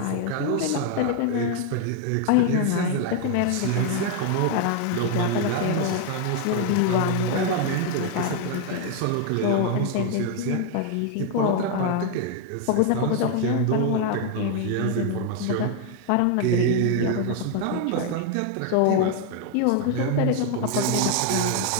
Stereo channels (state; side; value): different; both; correlation 0.00